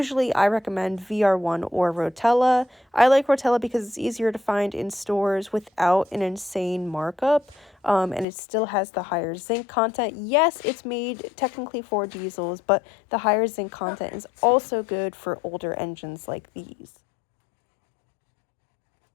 I recommend VR1 or Rotella. I like Rotella because it's easier to find in stores without an insane markup. And it still has the higher zinc content. Yes, it's made technically for diesels, but the higher zinc content is also good for older engines like these.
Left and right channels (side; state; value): right; drops out; at 8.2 s